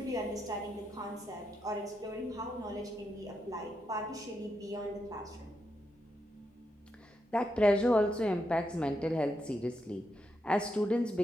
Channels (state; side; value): normal; both; correlation 0.83